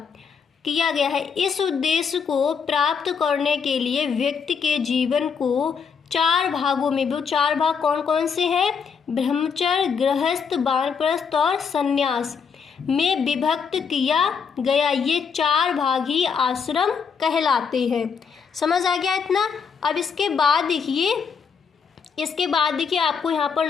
है। इस उद्देश्य को प्राप्त करने के लिए व्यक्ति के जीवन को 4 भागों में, वो 4 भाग कौन कौन से हैं? ब्रह्मचर्य, गृहस्थ, वानप्रस्थ और संन्यास में विभक्त किया गया। ये 4 भाग ही आश्रम कहलाते हैं। समझ आ गया इतना। अब इसके बाद देखिए आपको यहाँ पर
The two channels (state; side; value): quieter; right; 6.2 dB